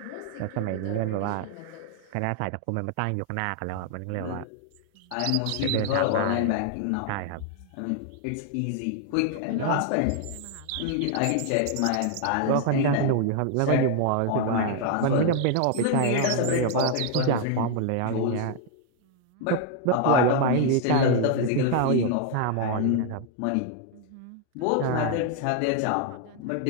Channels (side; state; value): both; different; correlation 0.00